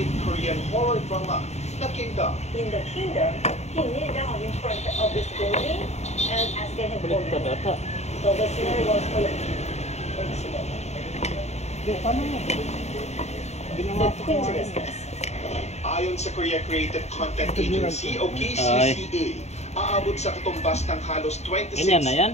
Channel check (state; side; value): late; right; 0.32 ms